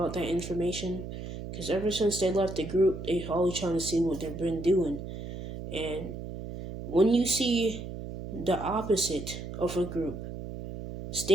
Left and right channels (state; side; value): noise; right; hum, 9 dB below the sound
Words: that information. Because ever since they left the group, they always trying to see what they've been doing. And when you see the opposite of a group